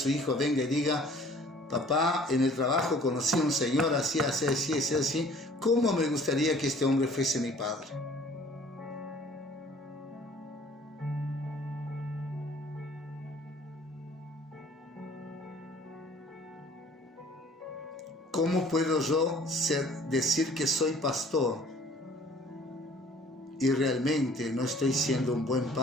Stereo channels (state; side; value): normal; both; correlation 0.52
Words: hijo venga y diga, papá, en el trabajo conocí a un señor así, así, así, así, así. ¿Cómo me gustaría que este hombre fuese mi padre? ¿Cómo puedo yo decir que soy pastor y realmente no estoy siendo un buen